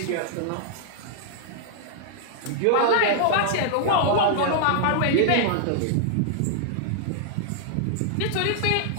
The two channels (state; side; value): different; both; correlation -0.01